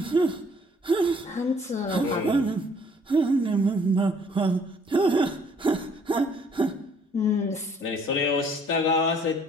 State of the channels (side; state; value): both; normal; correlation 0.61